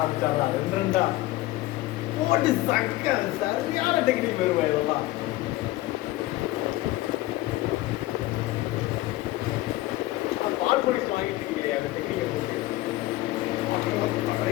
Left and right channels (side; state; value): right; quieter; 17.8 dB